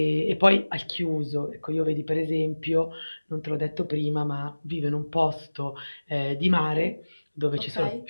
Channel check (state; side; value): inverted; both; correlation -1.00